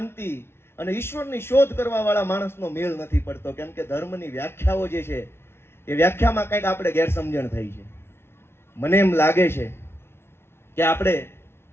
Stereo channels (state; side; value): late; right; 0.12 ms